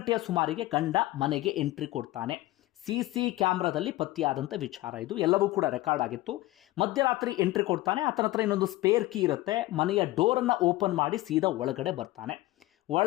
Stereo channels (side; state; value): right; quieter; 17.9 dB